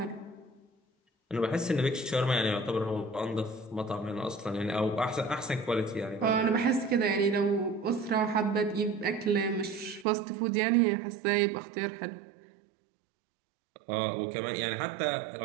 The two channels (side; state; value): left; drops out; at 10.1 s